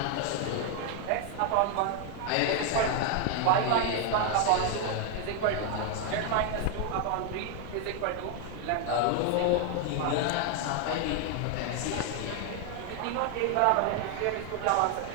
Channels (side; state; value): both; different; correlation 0.01